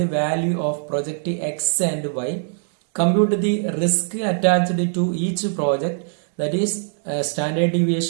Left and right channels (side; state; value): left; silent; digital silence